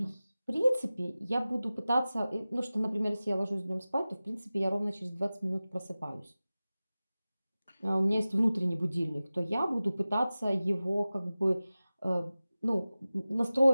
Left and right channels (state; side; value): inverted; both; correlation -0.96